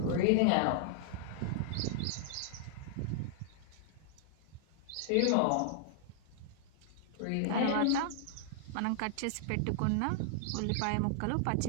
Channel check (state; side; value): different; both; correlation -0.01